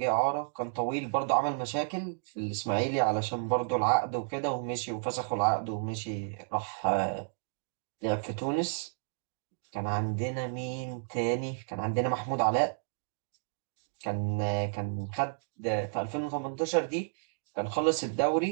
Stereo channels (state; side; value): silent; left; digital silence